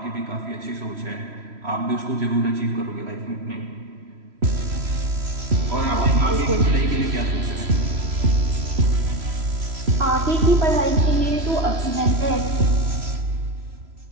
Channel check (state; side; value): late; left; 3.0 ms